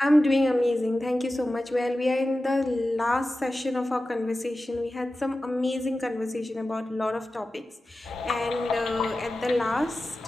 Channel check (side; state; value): both; normal; correlation 0.94